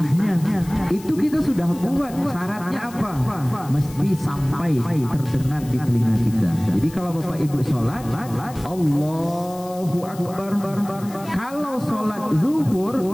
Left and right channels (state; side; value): noise; left; hiss, 19 dB below the sound